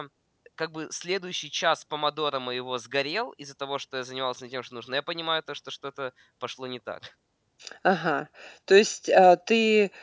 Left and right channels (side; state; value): both; identical; correlation 1.00